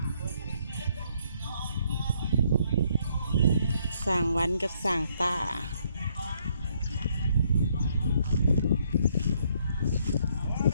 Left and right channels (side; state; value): both; inverted; correlation -0.69